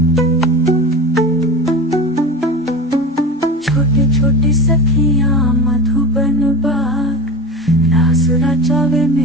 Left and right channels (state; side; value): normal; both; correlation 0.31